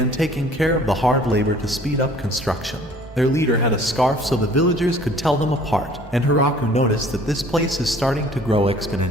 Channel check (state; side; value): normal; both; correlation 0.53